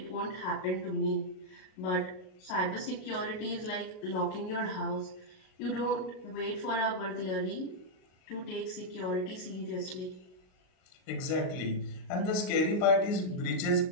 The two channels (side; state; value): right; late; 38 ms